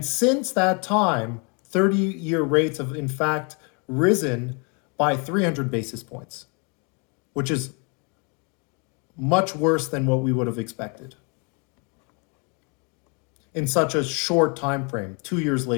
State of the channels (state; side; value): quieter; right; 34.5 dB